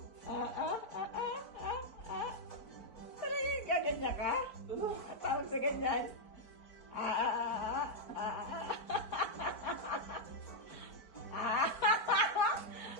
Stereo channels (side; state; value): right; late; 4.6 ms